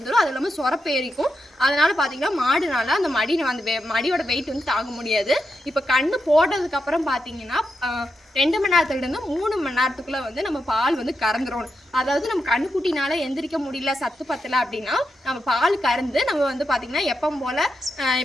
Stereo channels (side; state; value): both; normal; correlation 0.86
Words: அது இல்லாமல் சொரப்பேரிக்கும். அதனால் பார்த்தீங்கன்னா மாடுனால அந்த மடியோட வெயிட் வந்து தாங்க முடியாது. இப்போ கண்ணு போட்டதுக்கப்புறம் பார்த்தீங்கன்னா 2 மணி நேரத்துலேருந்து 3 மணி நேரத்துக்குள்ளே வந்து நம்ம பால் வந்து கறந்துடணும். அதாவது நம்ம கண்ணுக்குட்டினால எந்திரிக்க முடியல, சத்து பத்தலை அப்படின்னா நம்ம பால் கறந்து நம்ம வந்து பார்த்திங்கன்னா எப்பவும் போல்